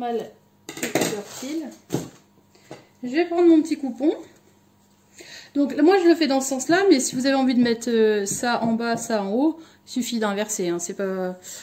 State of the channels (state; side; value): identical; both; correlation 1.00